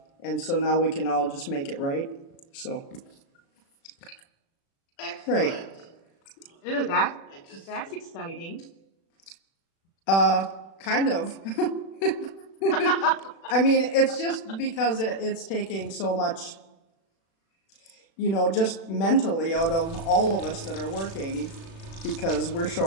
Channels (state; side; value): late; right; 36 ms